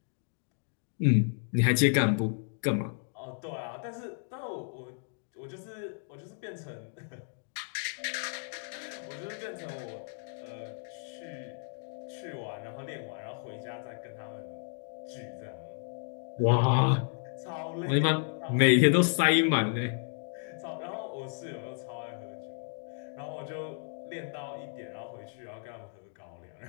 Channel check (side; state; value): right; silent; 56 dB below the other